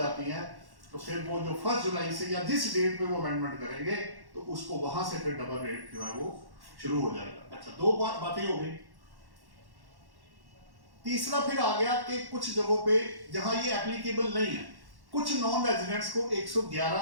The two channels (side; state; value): left; late; 1.1 ms